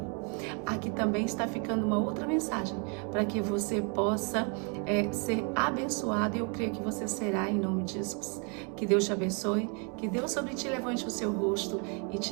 Aqui também está ficando uma outra mensagem para que você possa ser abençoado, e eu creio que você será em nome de Jesus. Que Deus te abençoe, que Deus sobre ti levante o seu rosto e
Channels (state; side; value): quieter; left; 37.1 dB